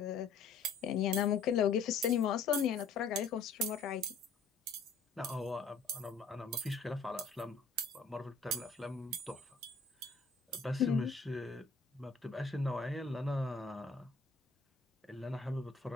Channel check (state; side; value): quieter; right; 4.4 dB